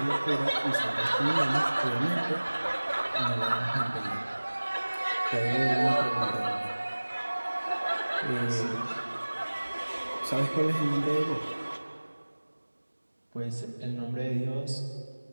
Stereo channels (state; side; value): inverted; both; correlation -1.00